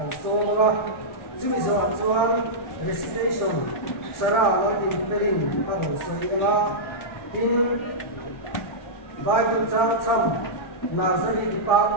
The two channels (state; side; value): late; right; 1.4 ms